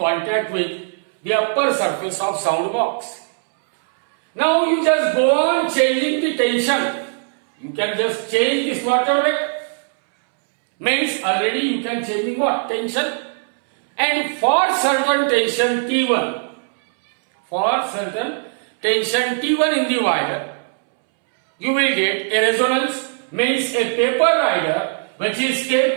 with the upper surface of sound box. Now you just go on changing the tension. You can just change the slaughter rate. Means already you can change what? Tension. And for certain tension T1, in the wire, you will get a resonance, means a paper rider which is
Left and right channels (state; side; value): silent; left; 66 dB below the other